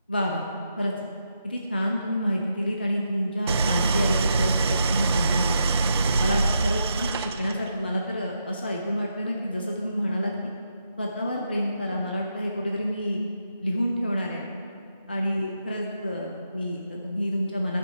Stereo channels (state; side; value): inverted; both; correlation -0.82